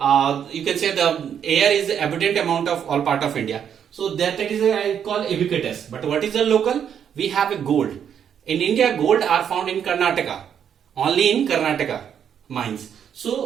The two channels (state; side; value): quieter; left; 8.5 dB